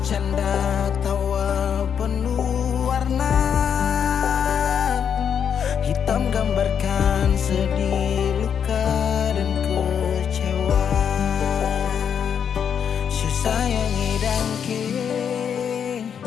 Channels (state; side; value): quieter; right; 7.8 dB